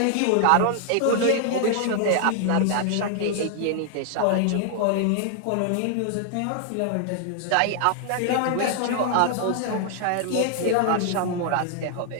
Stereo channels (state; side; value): different; both; correlation 0.00